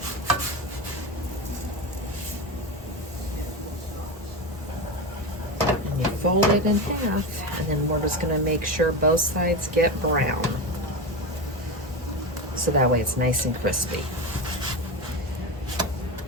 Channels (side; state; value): both; normal; correlation 0.20